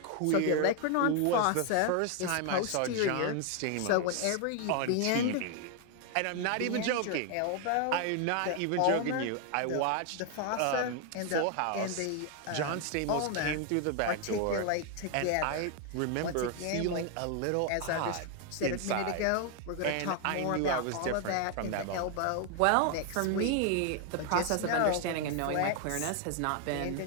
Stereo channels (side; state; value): both; different; correlation 0.01